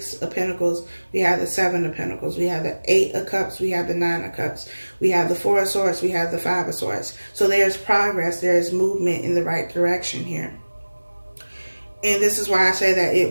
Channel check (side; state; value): both; inverted; correlation -1.00